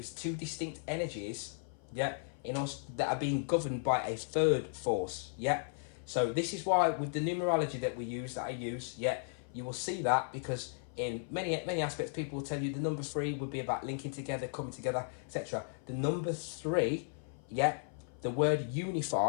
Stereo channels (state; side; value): silent; right; 54 dB below the other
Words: two distinct energies, yeah, in us that are being governed by a third force, yeah. So this is why with the numerology that I use, yeah, you will see that, because in many aspects people will tell you the number 3 would be about linking together, coming together, etc. The number 3, yeah, the word